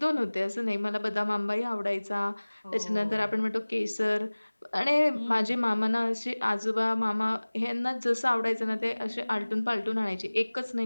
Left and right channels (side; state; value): both; inverted; correlation -1.00